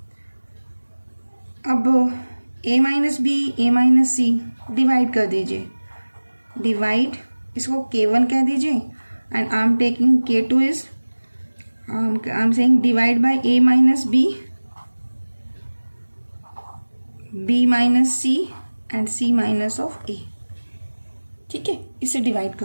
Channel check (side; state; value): both; inverted; correlation -1.00